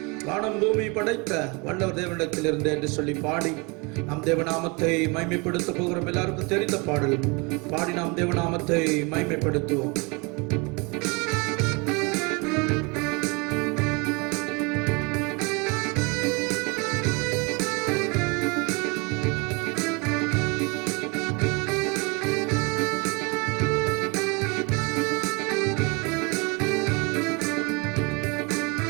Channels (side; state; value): left; quieter; 29.1 dB